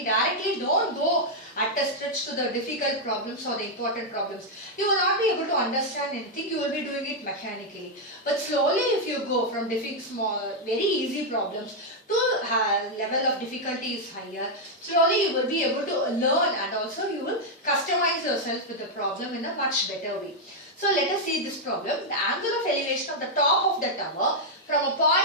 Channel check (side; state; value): both; normal; correlation -0.01